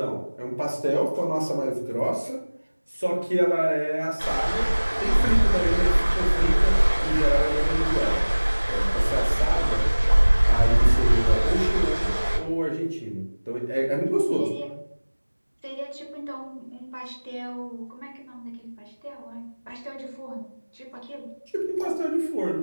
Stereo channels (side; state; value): both; inverted; correlation -1.00